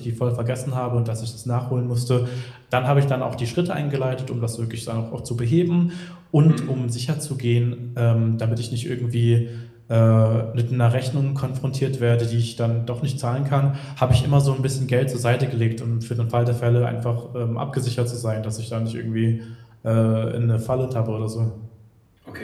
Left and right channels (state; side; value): identical; both; correlation 1.00